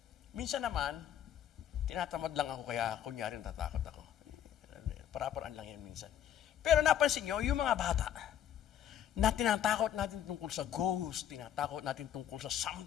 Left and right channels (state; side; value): quieter; right; 10.3 dB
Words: Minsan naman, tinatamad lang ako kaya kunyari natatakot ako. Para-paraan lang yan minsan. Pero napansin nyo, yung mga bata, na tinatakot natin tungkol sa ghost, tinatakot natin tungkol sa